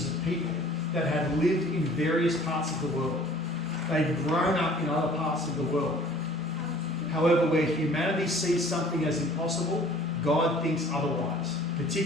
of people that had lived in various parts of the world. They'd grown up in other parts of the world. However, where humanity sees something as impossible, God thinks otherwise,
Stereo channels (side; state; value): both; normal; correlation 0.51